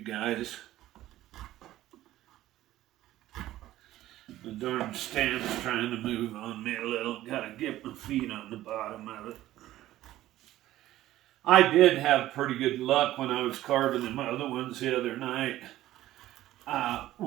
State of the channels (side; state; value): left; quieter; 14.6 dB